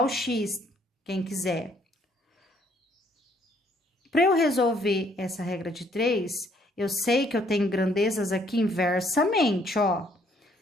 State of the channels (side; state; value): both; normal; correlation 0.65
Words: X, quem quiser. Para eu resolver essa regra de 3, eu sei que eu tenho grandezas aqui inversamente, ó.